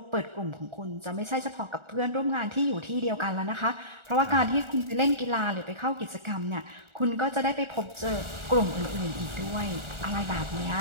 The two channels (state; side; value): late; left; 1.4 ms